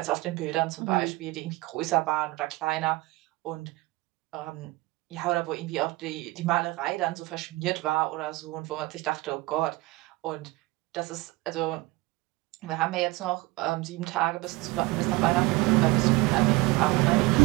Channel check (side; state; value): left; quieter; 21.4 dB